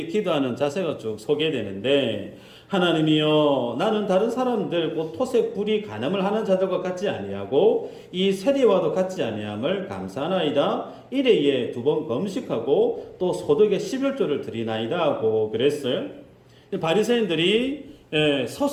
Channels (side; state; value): both; identical; correlation 1.00